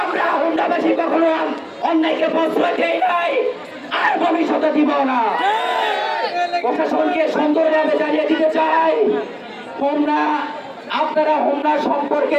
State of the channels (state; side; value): identical; both; correlation 1.00